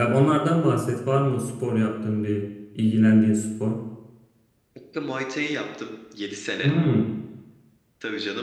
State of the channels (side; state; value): both; identical; correlation 1.00